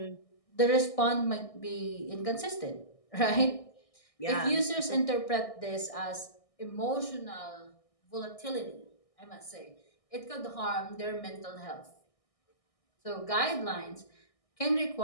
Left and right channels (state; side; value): late; right; 1.6 ms